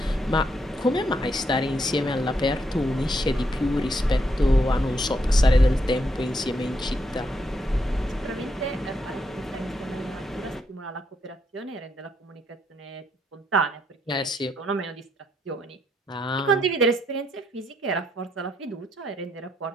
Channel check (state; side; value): normal; both; correlation 0.76